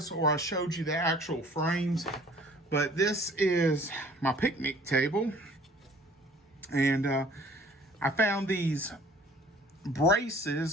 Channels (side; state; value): both; normal; correlation 0.52